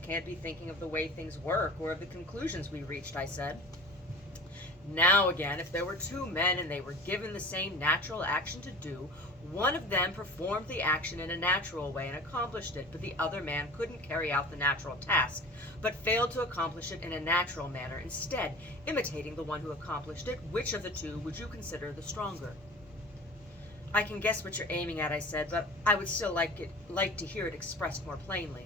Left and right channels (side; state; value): both; normal; correlation 0.38